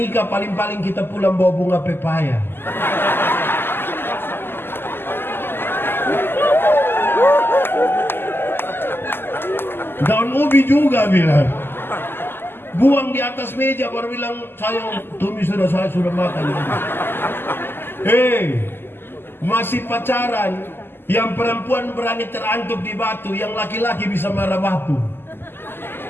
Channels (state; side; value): late; right; 0.10 ms